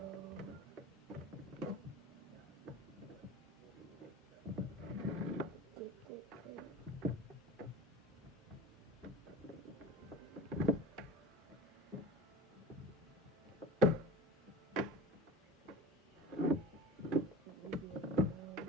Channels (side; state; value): both; normal; correlation 0.36